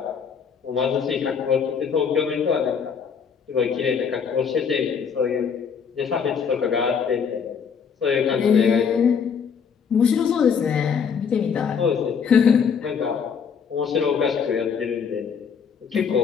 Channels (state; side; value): quieter; right; 6.6 dB